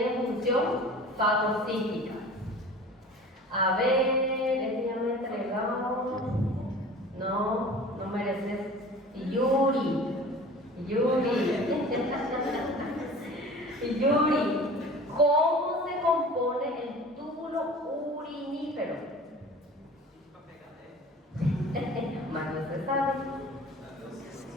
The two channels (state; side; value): normal; both; correlation 0.41